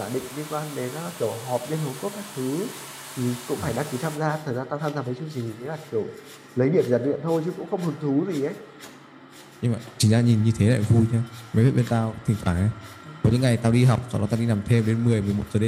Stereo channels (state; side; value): identical; both; correlation 1.00